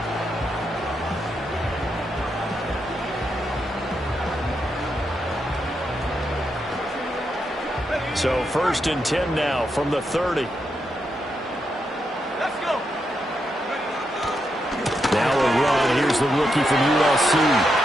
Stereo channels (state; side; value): normal; both; correlation 0.83